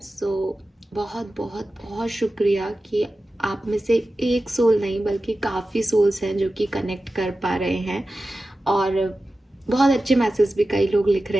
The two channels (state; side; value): normal; both; correlation 0.94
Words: बहुत बहुत बहुत शुक्रिया कि आप में से एक सोल नहीं बल्कि काफ़ी सोल्स हैं जो कि कनेक्ट कर पा रहे हैं, और बहुत अच्छे मैसेज भी कई लोग लिख